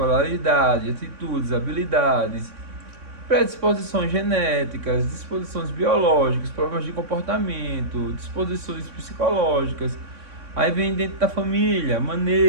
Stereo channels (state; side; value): late; left; 3.6 ms